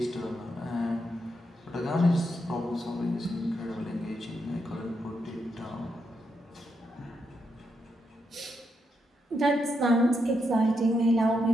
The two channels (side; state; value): both; normal; correlation 0.82